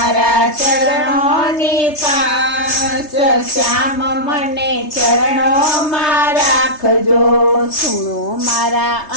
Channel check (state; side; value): late; right; 3.3 ms